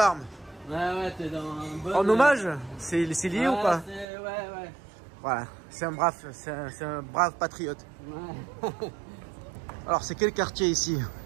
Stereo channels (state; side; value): drops out; left; at 4.0 s